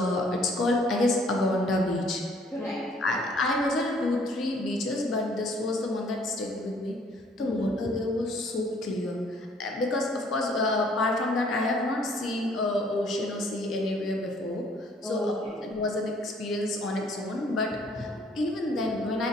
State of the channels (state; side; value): normal; both; correlation 0.60